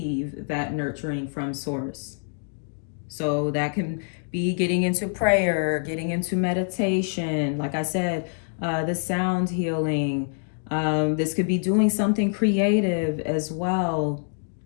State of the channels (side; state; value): right; silent; 61 dB below the other